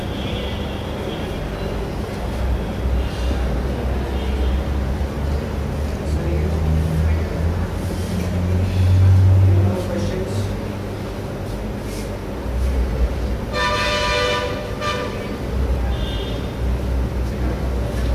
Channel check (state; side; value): identical; both; correlation 1.00